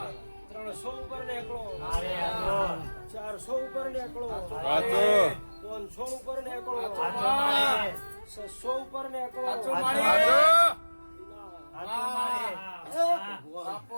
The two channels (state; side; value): inverted; both; correlation -1.00